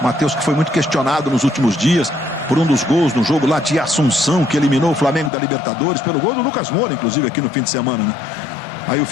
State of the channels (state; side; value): drops out; right; at 5.3 s